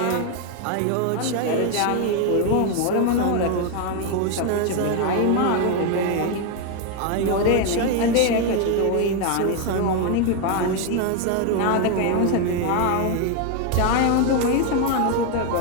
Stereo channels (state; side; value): different; both; correlation 0.01